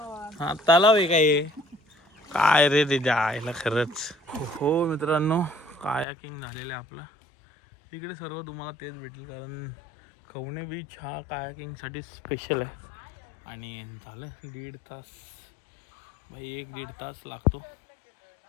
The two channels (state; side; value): drops out; right; at 6.1 s